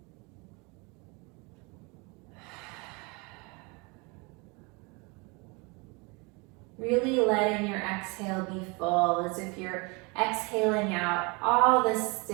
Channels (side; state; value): left; quieter; 29.1 dB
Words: Really letting your exhale be full, as if you're exhaling out all the